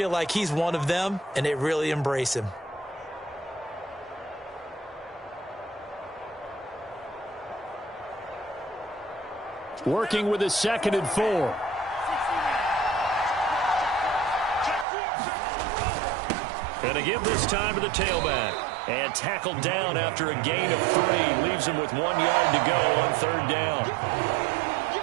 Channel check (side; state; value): left; drops out; at 14.9 s